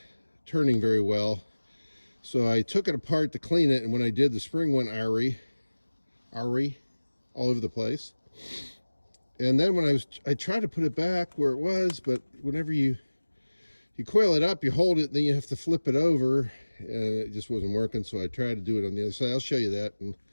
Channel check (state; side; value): inverted; both; correlation -1.00